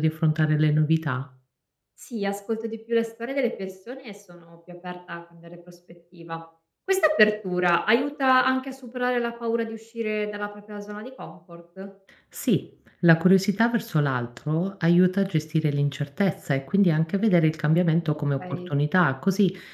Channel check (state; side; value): identical; both; correlation 1.00